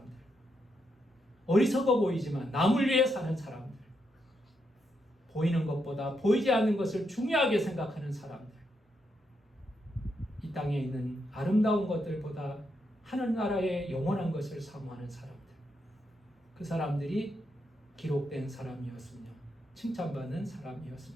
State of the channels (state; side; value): normal; both; correlation 0.81